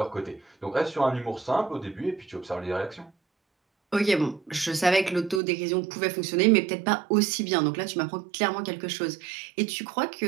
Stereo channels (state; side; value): drops out; left; at 5.4 s